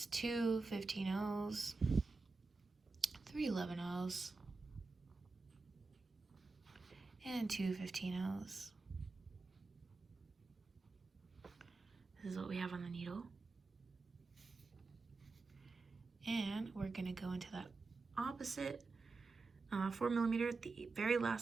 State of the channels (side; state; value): left; quieter; 3.9 dB